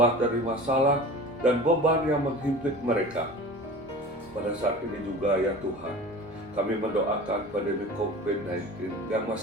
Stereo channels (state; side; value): normal; both; correlation 0.38